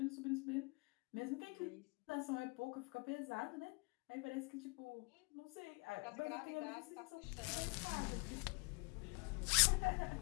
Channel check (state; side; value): quieter; right; 30.3 dB